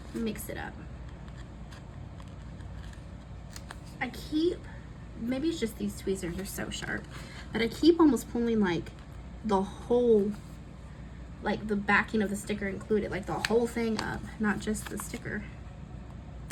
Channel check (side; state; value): both; identical; correlation 1.00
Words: Mix it up. I keep, maybe it's just these tweezers are so sharp, but I keep almost pulling like the whole, like the backing of the sticker included, like the whole thing up, not just the sticker.